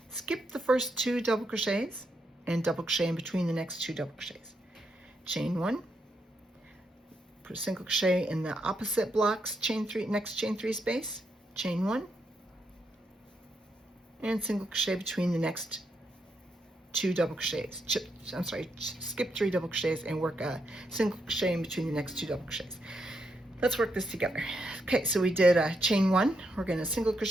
skip the first 2 double crochets, and double crochet in between the next 2 double crochets. Chain 1, put a single crochet in the opposite blocks, chain 3, next chain 3 space, chain 1, and single crochet between the next 2 double crochets. Skip 3 double crochets and work a single crochet in between the next 2 double crochets. Let's work this together. Okay, so we did a chain 1. We're going to single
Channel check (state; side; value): normal; both; correlation 0.81